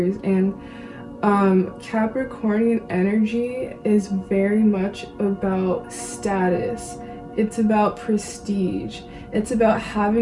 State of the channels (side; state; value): both; identical; correlation 1.00